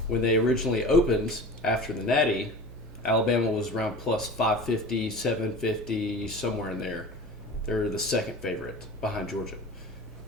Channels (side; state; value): both; normal; correlation 0.36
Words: When they originally opened after the Natty, Alabama was around plus 550, 750, somewhere in there. They're the second favorite behind Georgia.